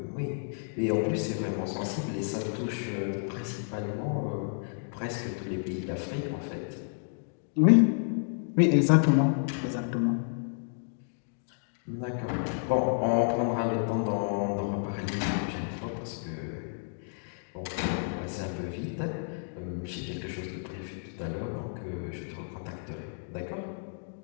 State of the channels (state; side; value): silent; right; digital silence